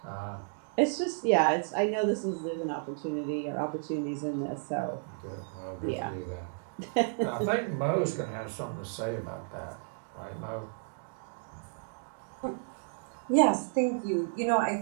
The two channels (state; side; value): silent; left; digital silence